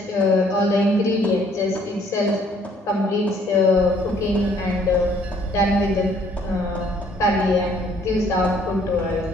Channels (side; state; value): both; normal; correlation 0.62